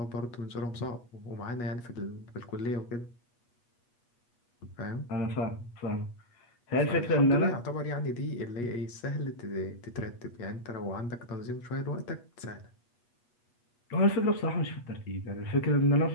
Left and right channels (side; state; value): right; late; 8.3 ms